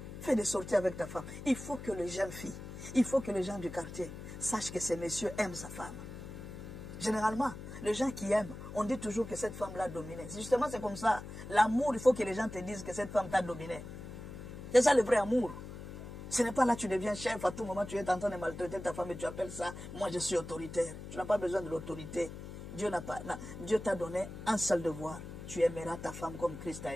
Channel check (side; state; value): left; noise; hum, 11 dB below the sound